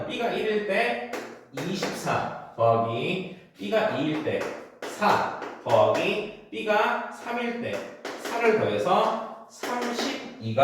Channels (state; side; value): identical; both; correlation 1.00